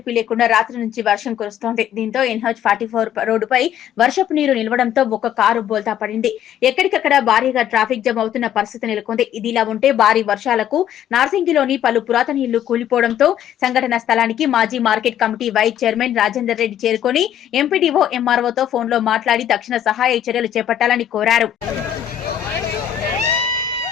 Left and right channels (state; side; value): quieter; right; 10.5 dB